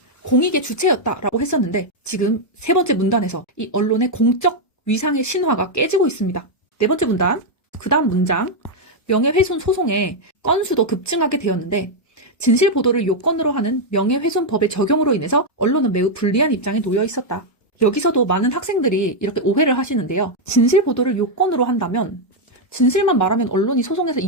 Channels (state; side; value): late; right; 1.1 ms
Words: 공익의 주체였다라고 했었는데 지금 세 번째 문단에서 이 언론의 공적 위상의 신화가 깨지고 있습니다. 네 번째 문단, 그 다음 문장. 명예훼손 소송의 건수도 급증하게 되었는데 진실 보도를 요건으로 하는 명예훼손법의 적용으로 인해서 언론은 매우 불리한 입장에 놓여 있었다. 여기서도 많은 학생들이 이렇게 오해를 하시는데요. 진실 보도를 요건으로 한다면 진실만 말하면 언론이 소송에서